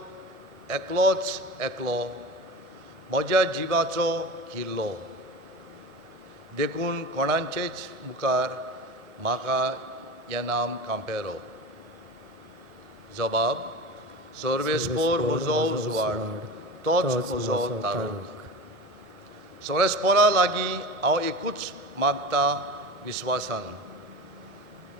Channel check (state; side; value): normal; both; correlation 0.30